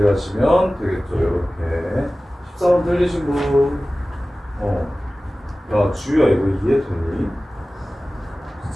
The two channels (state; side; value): normal; both; correlation 0.97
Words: 되겠죠. 이렇게 14번 틀리신 분 야 주희야 이거 이해되니?